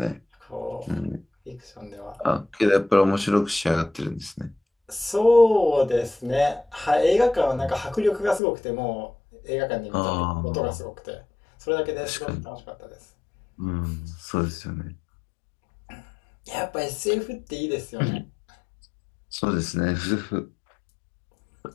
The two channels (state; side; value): drops out; right; at 8.4 s